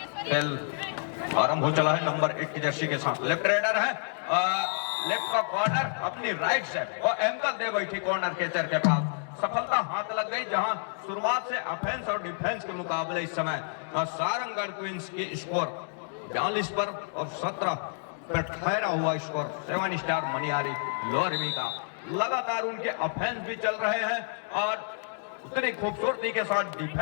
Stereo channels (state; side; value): silent; right; digital silence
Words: खेल आरंभ हो चला है नंबर 1 की जर्सी के साथ। लेफ्ट रेडर है, लेफ्ट का कॉर्नर अपनी राइट से और एंकल दे बैठी कॉर्नर कैचर के पास, सफलता हाथ लग गई। जहां शुरुआत से ऑफेंस और डिफेंस के मुकाबले इस समय सारंगढ़ क्वींस की स्कोर 42 पर और 17 पर ठहरा हुआ स्कोर 7 स्टार मनियारी लोरमी का। लगातार उनके ऑफेंस भी चल रहे हैं और उतनी खूबसूरती के साथ